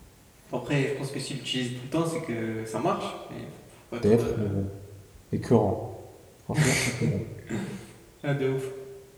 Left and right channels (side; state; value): both; identical; correlation 1.00